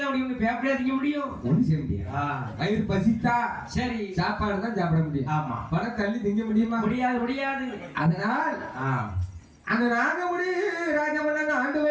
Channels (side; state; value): both; identical; correlation 1.00